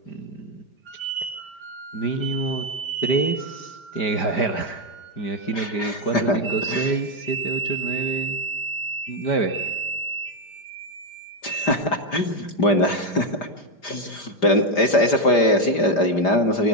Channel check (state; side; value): late; right; 5.0 ms